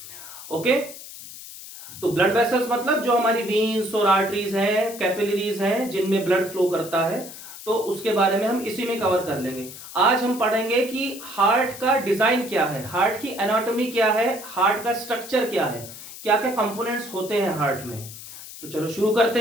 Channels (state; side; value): noise; left; hiss, 14 dB below the sound